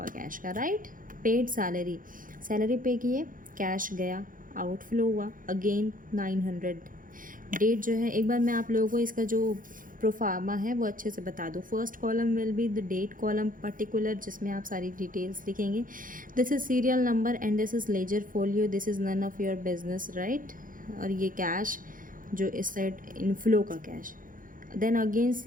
कैश का, राइट। पेड सैलरी, सैलरी पे किए, कैश गया, आउटफ्लो हुआ अगेन 900। डेट जो है, एक बार मैं आप लोगों को इसका जो प्रोफार्मा है वो अच्छे से बता दूँ। First column will be the date column particular, जिसमें आप सारी डिटेल्स लिखेंगे। This is serial number and this is ledger folio, this is none of your business, right. और ये कैश जो इस साइड इनफ्लो का cash, then again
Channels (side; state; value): left; late; 0.40 ms